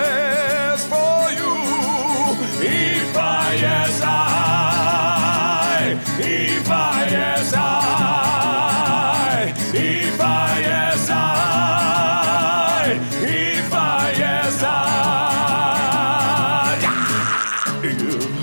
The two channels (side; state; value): both; inverted; correlation -1.00